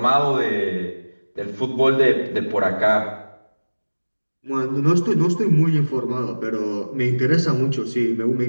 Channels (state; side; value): inverted; both; correlation -1.00